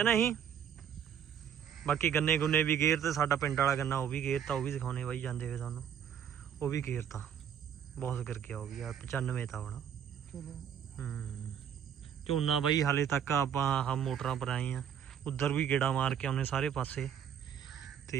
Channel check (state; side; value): quieter; left; 8.6 dB